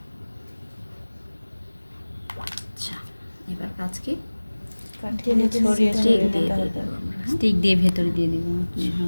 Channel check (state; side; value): inverted; both; correlation -1.00